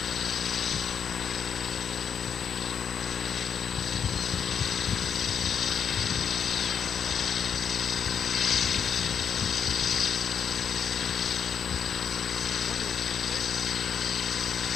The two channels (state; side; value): quieter; right; 7.5 dB